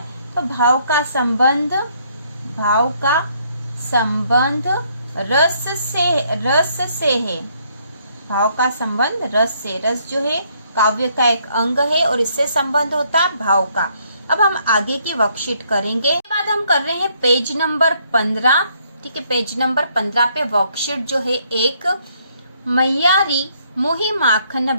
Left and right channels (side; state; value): both; inverted; correlation -0.69